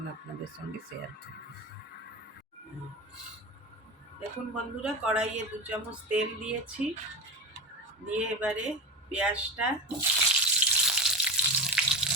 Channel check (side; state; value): both; normal; correlation 0.25